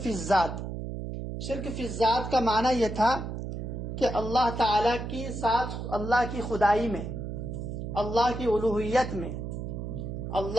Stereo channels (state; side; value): noise; right; hum, 6 dB below the sound